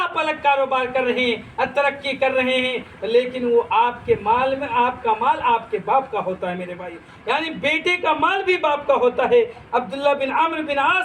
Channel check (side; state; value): both; identical; correlation 1.00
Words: الگ کاروبار کر رہے ہیں، ترقی کر رہے ہیں، لیکن وہ آپ کے مال میں، آپ کا مال آپ کے باپ کا ہوتا ہے میرے بھائی، یعنی بیٹے کا مال بھی باپ کا ہوتا ہے۔ عبداللہ بن عمرو بن